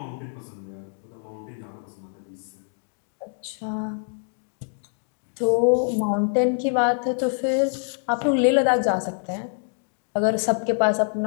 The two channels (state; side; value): silent; right; digital silence